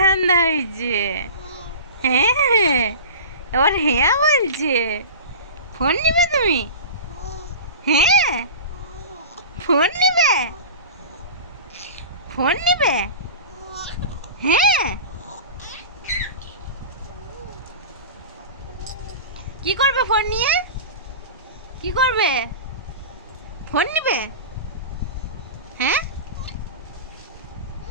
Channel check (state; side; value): inverted; both; correlation -0.33